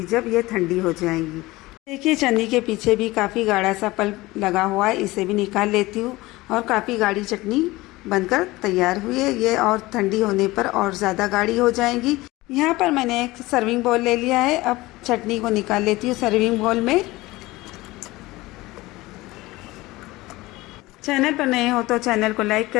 जब ये ठंडी हो जाएंगी। देखिए चटनी के पीछे भी काफ़ी गाढ़ा सा पल्प लगा हुआ है, इसे भी निकाल लेती हूँ, और काफ़ी गाढ़ी चटनी बनकर तैयार हुई है। ये और ठंडी होने पर और ज़्यादा गाढ़ी हो जाएंगी। यहाँ पर मैंने एक सर्विंग बाउल ले लिया है। अब चटनी को निकाल लेती हूँ सर्विंग बाउल में। चैनल पर नए हो तो चैनल को लाइक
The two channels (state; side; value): quieter; right; 19.8 dB